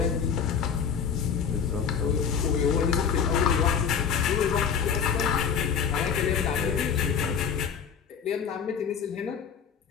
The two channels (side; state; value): right; quieter; 7.0 dB